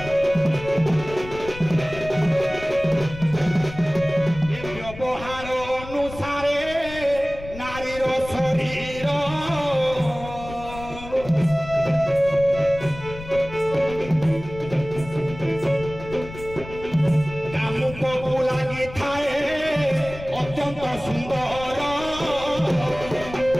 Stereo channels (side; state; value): left; noise; rumble, 14 dB below the sound